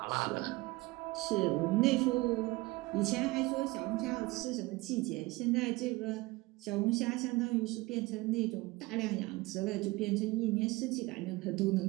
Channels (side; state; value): left; quieter; 21.5 dB